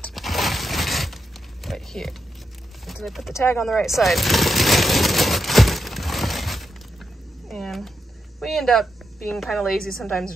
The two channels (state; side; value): normal; both; correlation 0.84